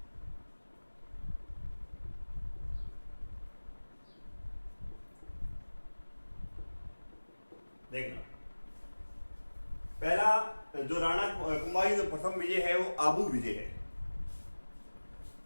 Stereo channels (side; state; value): both; inverted; correlation -1.00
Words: देखना पहला जो राणा कुंभा की जो प्रथम विजय है वो आबू विजय है।